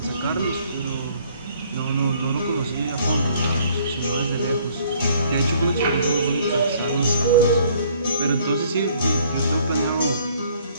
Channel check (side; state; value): both; inverted; correlation -0.60